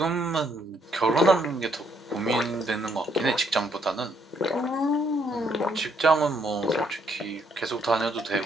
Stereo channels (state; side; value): normal; both; correlation 0.71